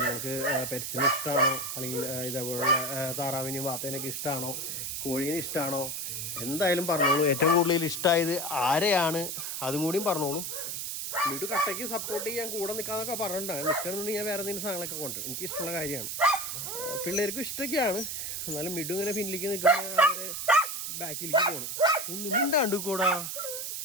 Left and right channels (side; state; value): right; noise; hiss, 4 dB below the sound